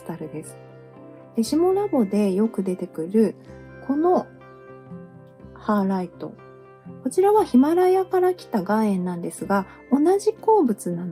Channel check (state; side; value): identical; both; correlation 1.00